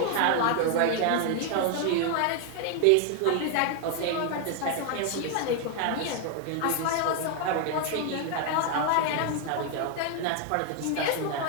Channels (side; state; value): both; different; correlation 0.00